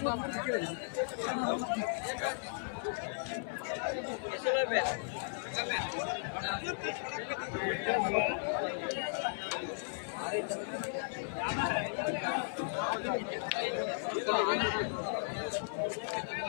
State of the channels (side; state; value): right; silent; 54 dB below the other